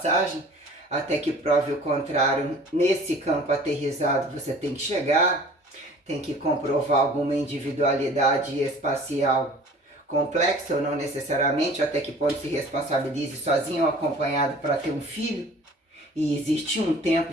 até que prove o contrário. Nesse campo aterrizado você tem que chegar, tem que comprovar alguma individualidade espacial complexa ou não necessariamente, até que ponto se responsabilize sozinho ou acompanhado para ter um filho. E existe um tempo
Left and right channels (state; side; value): normal; both; correlation 0.47